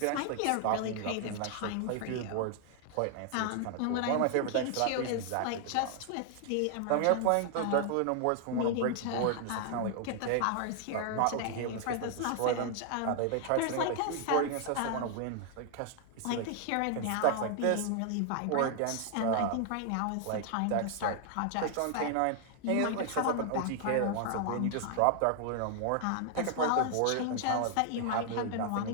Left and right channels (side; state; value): both; different; correlation 0.00